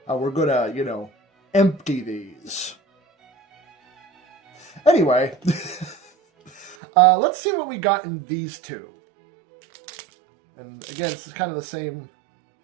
We're gonna, empty these. Anyway, let's see what we got in these two. And again, this is kind of the same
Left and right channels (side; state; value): left; drops out; at 6.8 s